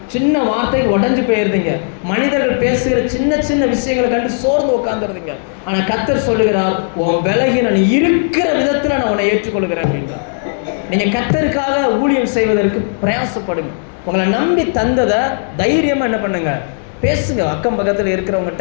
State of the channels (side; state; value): right; silent; digital silence